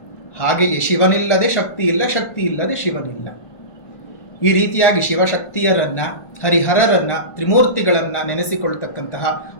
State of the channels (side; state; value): right; late; 1.5 ms